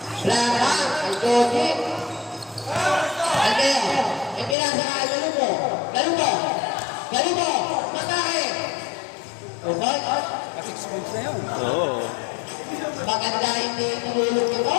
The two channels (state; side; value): drops out; right; at 4.5 s